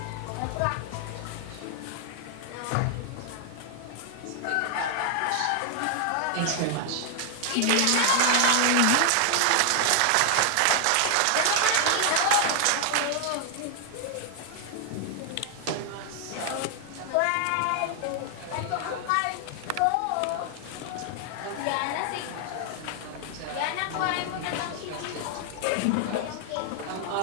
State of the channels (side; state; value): both; different; correlation 0.00